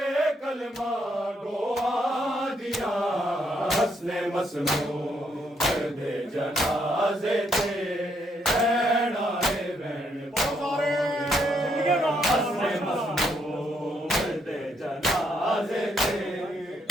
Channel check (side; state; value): both; normal; correlation 0.74